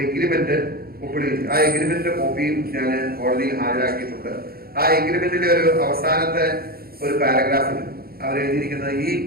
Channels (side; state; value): left; late; 0.44 ms